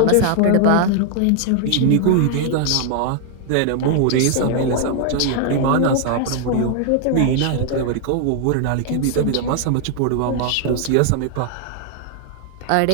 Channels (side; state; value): both; different; correlation 0.00